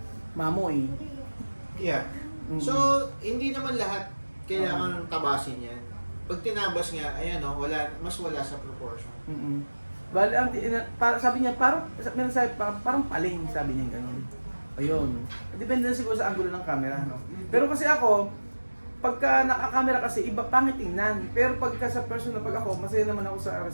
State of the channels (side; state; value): both; inverted; correlation -1.00